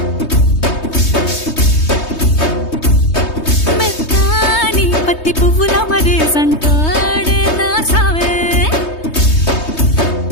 మెత్తాని పత్తి పువ్వుల మరేసంటాడే నా సావే.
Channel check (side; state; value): right; late; 3.2 ms